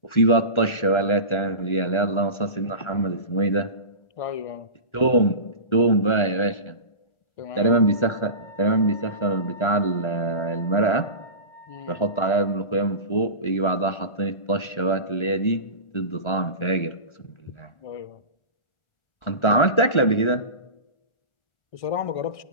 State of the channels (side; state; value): right; late; 1.4 ms